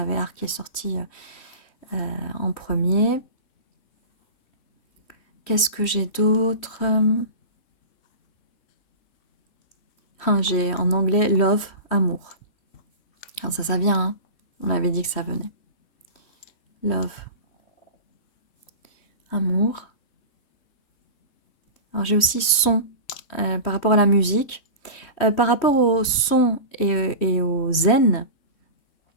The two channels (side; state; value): right; late; 3.1 ms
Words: art qui est sorti en premier. Qu'est-ce que j'ai d'autre? J'ai en anglais love, amour. Alors ça vient, hein. On avait dit que ça venait. Love, amour. Alors j'ai aussi son par rapport à la musique. Par rapport au son et au zen,